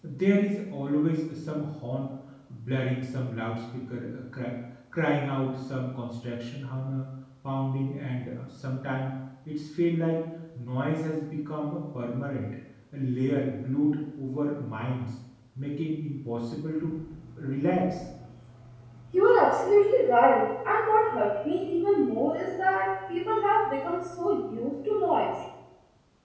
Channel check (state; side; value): identical; both; correlation 1.00